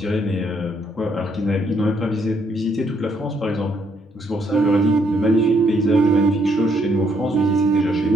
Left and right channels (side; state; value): both; normal; correlation 0.71